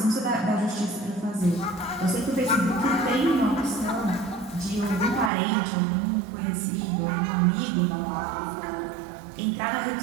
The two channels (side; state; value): left; drops out; at 5.3 s